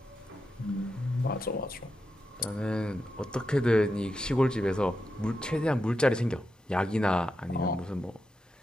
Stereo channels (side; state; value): both; normal; correlation 0.87